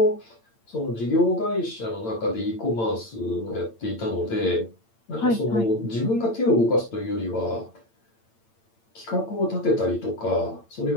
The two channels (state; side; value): late; right; 8.8 ms